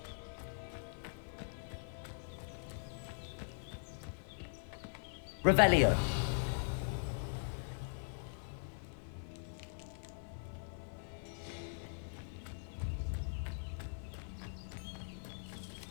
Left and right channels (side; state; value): right; silent; 50 dB below the other